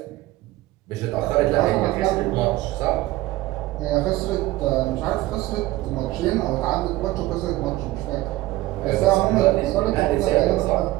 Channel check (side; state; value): left; quieter; 17.6 dB